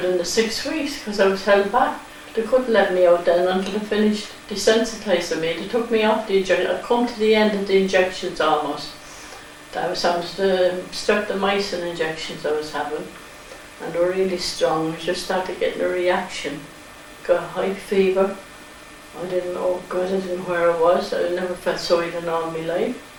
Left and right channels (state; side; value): identical; both; correlation 1.00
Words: the 6 weeks, because I was held back. They couldn't let me out then until they finished desensitising me. They took me off the injection. I'd come to the end of the injections almost. That was the streptomycin injections I was having, and they were really strong. I just started getting a reaction. Got a high fever. I didn't know, God, I didn't know where I was. I never felt so ill in all my life.